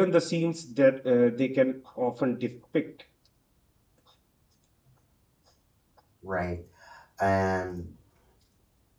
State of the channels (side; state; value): both; identical; correlation 1.00